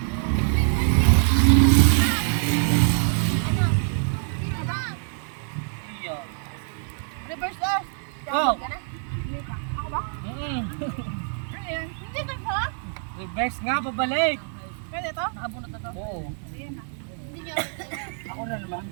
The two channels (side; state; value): left; silent; 57 dB below the other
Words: ano? Sino ba? Iyo. Reverse us. Go! Ka na? Hindi pa. Ako ba? Ano yan? Hindi ka ba? Reverse nga, pabalik. Pwede to? Nakabunot na to. Oo. Ayan na. Hindi niyo. Ako na naman.